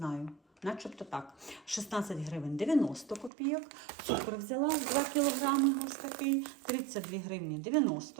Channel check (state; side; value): drops out; left; at 3.3 s